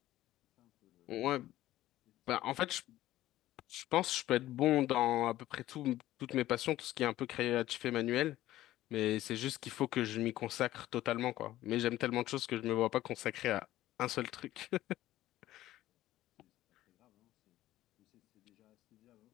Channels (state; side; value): quieter; right; 14.9 dB